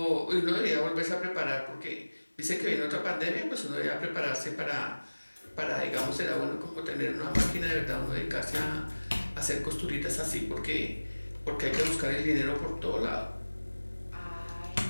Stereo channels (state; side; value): inverted; both; correlation -1.00